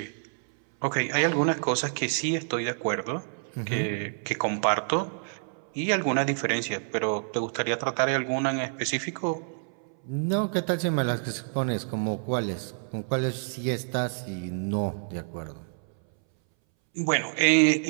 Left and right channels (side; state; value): left; silent; 59 dB below the other